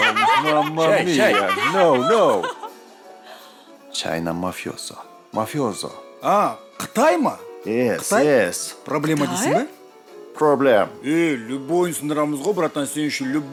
Мамма Шай. мия. No. Чайна мафиозо. Мафиозо. А, Қытай ма? Yes. Проблема дейсің ба? Проблем. Любойын сындырамыз ғой, братан, сен үшін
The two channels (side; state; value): both; identical; correlation 1.00